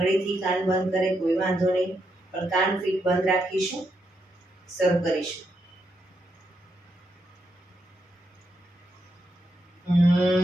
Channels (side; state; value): both; normal; correlation 0.81